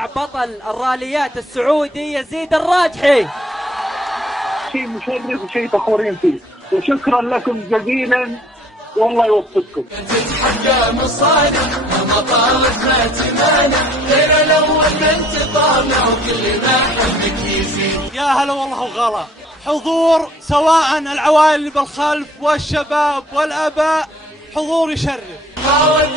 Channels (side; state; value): both; normal; correlation 0.58